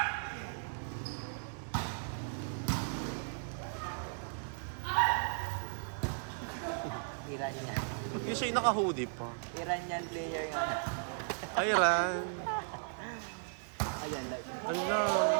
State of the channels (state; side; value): silent; left; 54 dB below the other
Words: Iranian. Ba't di siya naka-hoodie pa? Iranian player yun. Ay, Ran. Ayan lang. Ala.